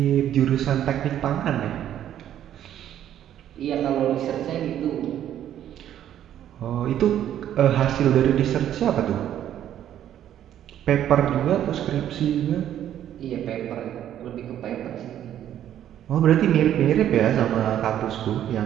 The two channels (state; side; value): quieter; left; 11.0 dB